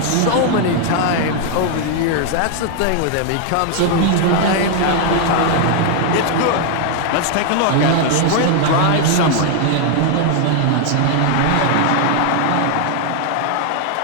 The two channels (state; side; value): different; both; correlation 0.00